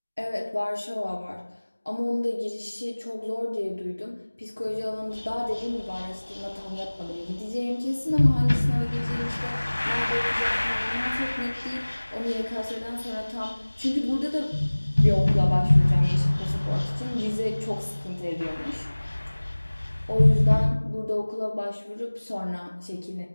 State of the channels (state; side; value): inverted; both; correlation -1.00